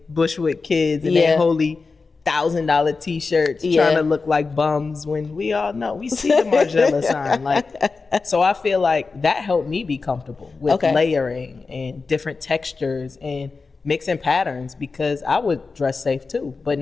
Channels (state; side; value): quieter; right; 4.3 dB